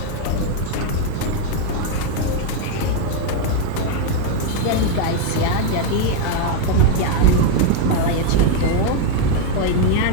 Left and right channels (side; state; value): both; different; correlation 0.01